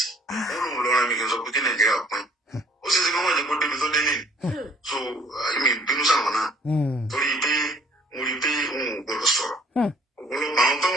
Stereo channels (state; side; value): normal; both; correlation 0.59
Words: wọ́n lòun lọ́ra mi kì í sọ pé kí Nàìjíríà pín ó sì ṣe kí wọ́n jẹ́ kó débi tó dé nìyí so èmi bínú sáwọn náà torí pé mo rí pé òun ò gbọdọ̀ sọ̀rọ̀ ọ̀pọ̀lọpọ̀ àwọn tó